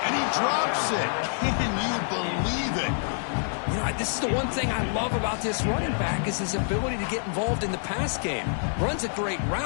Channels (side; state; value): right; silent; digital silence